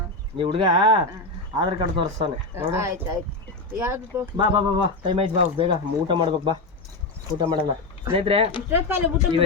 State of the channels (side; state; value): right; quieter; 3.1 dB